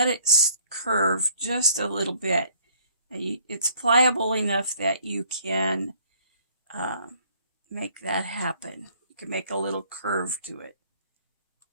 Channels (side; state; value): both; inverted; correlation -0.60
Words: it curve just a little bit. And it's pliable enough that you can make that happen. You can make a little curve to it.